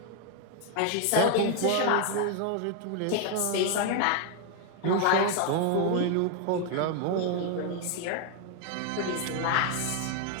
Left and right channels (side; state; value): both; different; correlation 0.01